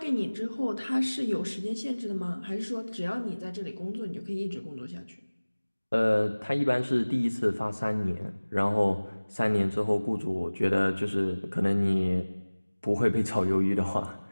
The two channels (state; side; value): inverted; both; correlation -1.00